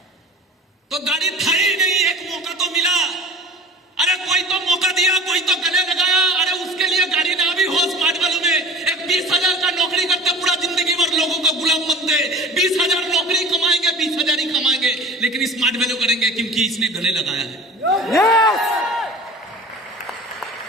तो गाड़ी था ही नहीं। एक मौका तो मिला, अरे कोई तो मौका दिया, कोई तो गले लगाया। अरे उसके लिए गाड़ी ना भी हो स्मार्ट वैल्यू में, एक 20,000 का नौकरी करते पूरा जिंदगी भर लोगों का गुलाम बनते, 20,000 नौकरी कमाएंगे, 20,000 ही कमाएंगे, लेकिन स्मार्ट वैल्यू करेंगे क्योंकि इसने गले लगाया है।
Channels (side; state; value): both; normal; correlation 0.38